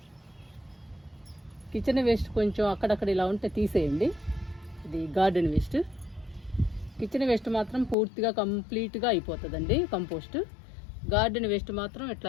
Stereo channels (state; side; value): drops out; right; at 8.0 s